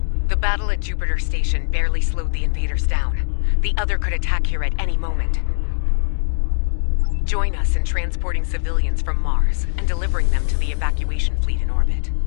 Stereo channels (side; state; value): right; silent; digital silence